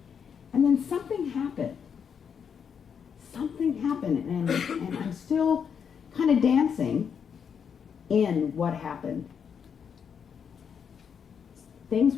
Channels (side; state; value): right; quieter; 7.1 dB